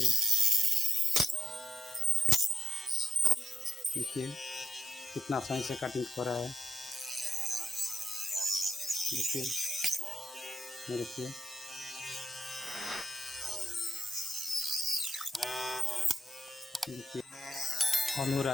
देखिए कितना आसानी से कटिंग हो रहा है। देखिए ये देखिए, देखिए ऑन हो रहा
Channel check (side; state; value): both; normal; correlation 0.84